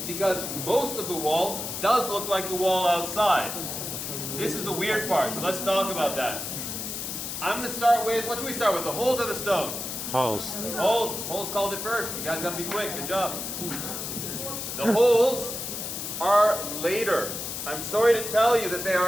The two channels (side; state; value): left; noise; hiss, 5 dB below the sound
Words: because most of the wall does look like the wall outside. This is the weird part, so let's talk about that. I'm going to start with, what should we start with, the holes or the stone? Holes. Holes. Holes called it first. You guys got to be quick. Good job. The holes are later. I'm sorry to tell you that they